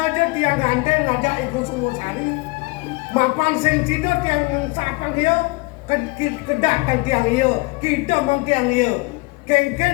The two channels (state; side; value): quieter; right; 25.9 dB